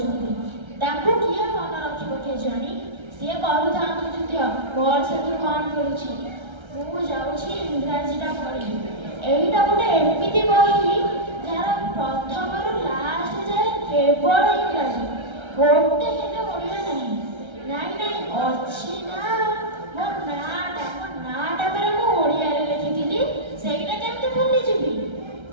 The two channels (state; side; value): late; left; 1.3 ms